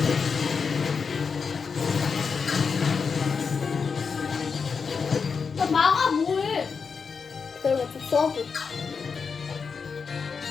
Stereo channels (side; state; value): right; quieter; 5.5 dB